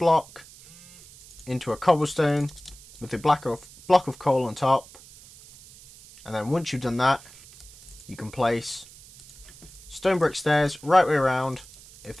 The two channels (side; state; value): right; noise; hiss, 21 dB below the sound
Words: into a cobblestone with a block of coal on top. And then once you've done that, you can place stone brick stairs right way around, if